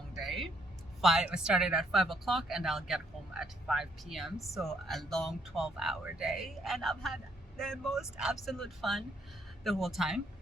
day. I started at 5 o'clock and I'll get home at 5 p.m. So a long 12-hour day, and I've had the most absolute fun the whole time.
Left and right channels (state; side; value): normal; both; correlation 0.69